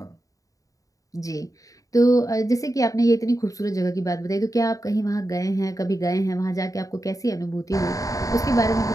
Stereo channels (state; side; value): late; right; 0.16 ms